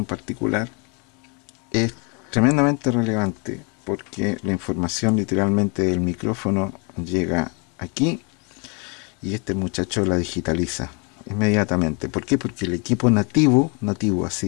particular, es tremendamente relevante porque la información literalmente del micrófono llega aquí y este muchacho la digitaliza inmediatamente. ¿Por qué? Porque el equipo nativo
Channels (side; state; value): right; quieter; 33.8 dB